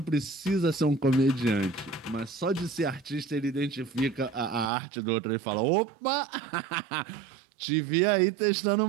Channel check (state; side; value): drops out; left; at 4.7 s